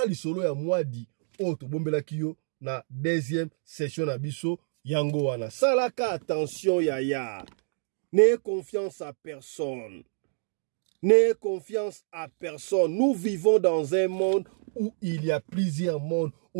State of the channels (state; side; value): silent; left; digital silence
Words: lisolo ya mwadi o to bombela kiyo na deuxième session na biso yango wana. Salaka attention yaya. N'ayez confiance à personne. N'ayez confiance à personne. Nous vivons dans un monde où il y a plusieurs mondes.